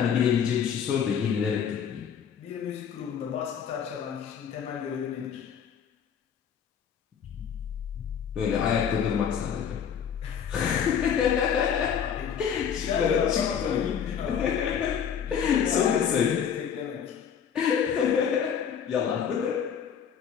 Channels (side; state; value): right; quieter; 7.8 dB